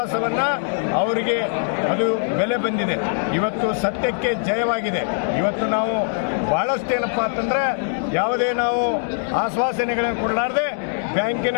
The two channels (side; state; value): right; silent; digital silence